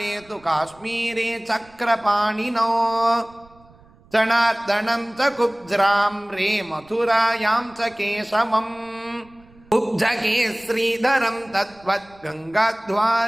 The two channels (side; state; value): right; noise; rumble, 27 dB below the sound